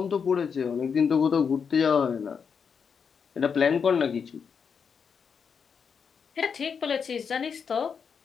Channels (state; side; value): quieter; right; 6.4 dB